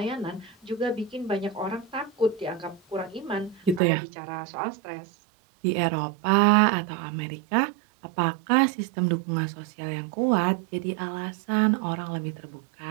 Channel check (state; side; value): drops out; left; at 3.8 s